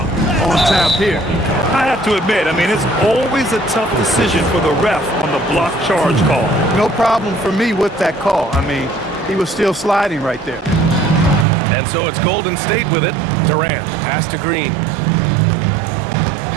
on tap here. I have to admit, it's always a tough decision for the ref on the block charge call. No problem for me with that call. He was still sliding right there. And so it's Golden State with it. Durant, pass to Green.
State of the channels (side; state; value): left; drops out; at 11.5 s